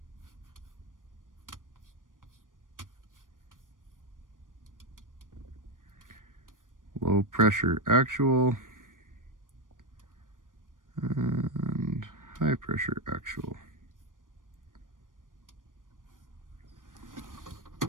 Low pressure actual and high pressure actual.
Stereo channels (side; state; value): left; late; 0.89 ms